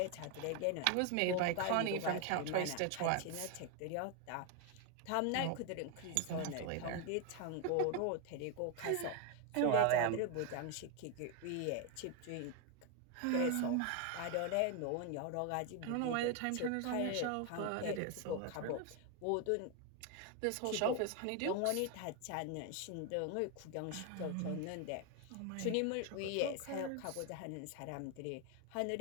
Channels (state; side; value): different; both; correlation 0.01